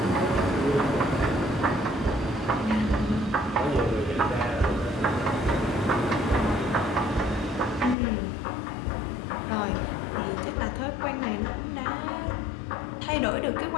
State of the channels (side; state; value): right; drops out; at 8.0 s